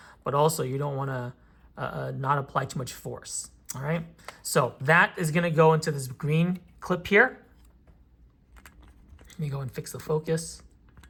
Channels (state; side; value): identical; both; correlation 1.00